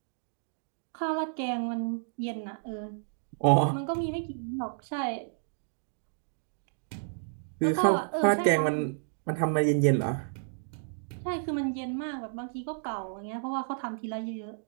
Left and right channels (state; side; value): silent; left; digital silence